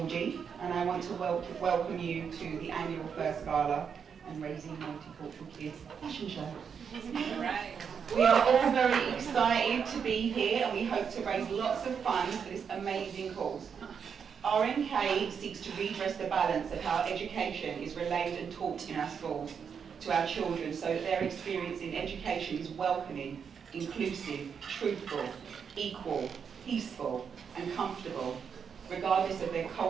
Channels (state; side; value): quieter; left; 6.8 dB